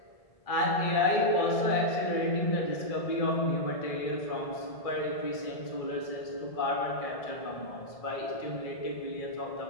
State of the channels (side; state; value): right; late; 1.7 ms